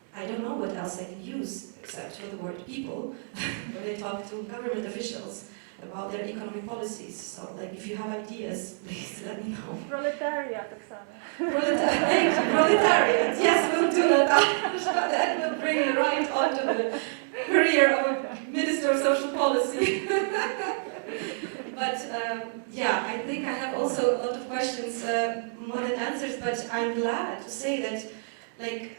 I don't know what else I can use except for the word people when I talk to government officials about their economic policies. So, like, if you have ideas, please let me know. Proletariat, Oksana. Proletariat. Yes, we'll do that. That will bring you right onto the career of a Minister of Social Policy. But yeah, I think I have also a lot of questions, more than answers. But I'm glad to say that, like,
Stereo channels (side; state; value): left; silent; digital silence